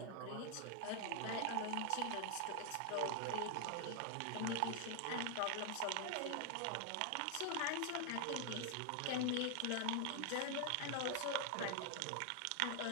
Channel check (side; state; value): both; different; correlation 0.00